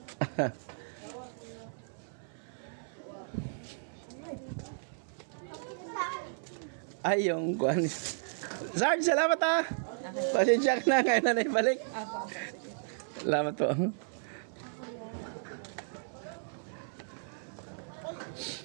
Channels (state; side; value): silent; left; 55 dB below the other